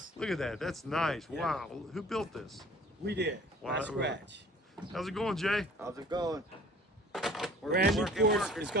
Look at that. That's nice. Yeah. Wow. Who built this? We did. Wow. From scratch. How's it going, Jay? How's it going? Brand new porch is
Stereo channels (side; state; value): both; normal; correlation 0.49